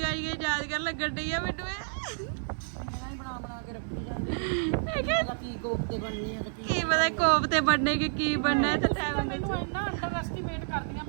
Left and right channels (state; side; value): silent; left; digital silence